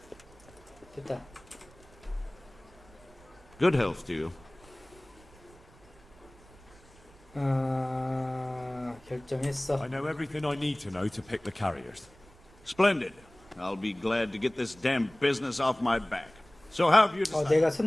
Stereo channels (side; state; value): right; noise; rumble, 25 dB below the sound